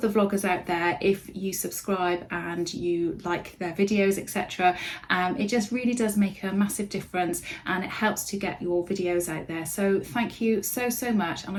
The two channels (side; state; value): both; identical; correlation 1.00